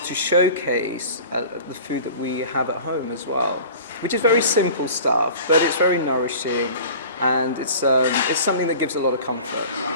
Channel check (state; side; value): inverted; both; correlation -0.41